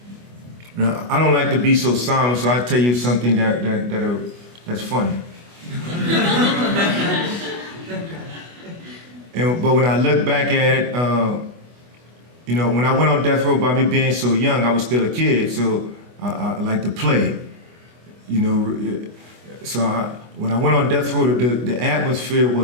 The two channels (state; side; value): late; left; 24 ms